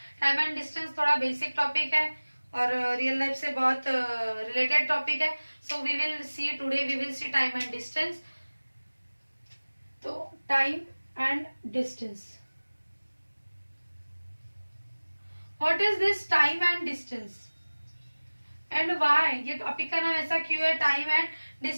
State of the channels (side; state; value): both; inverted; correlation -1.00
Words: टाइम एंड डिस्टेंस थोड़ा बेसिक टॉपिक है और रियल लाइफ से बहुत रिलेटेड टॉपिक है। So we will see today, we will see time and distance. तो time and distance, what is this time and distance and why, ये टॉपिक का नाम ऐसा क्यों है, टाइम एंड